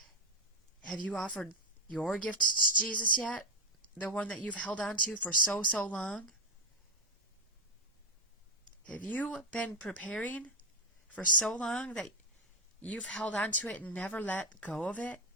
Have you offered your gift to Jesus yet? The one that you've held on to for so long? Have you been preparing for so long that you've held on to it and never let go of it?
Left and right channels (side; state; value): both; normal; correlation 0.04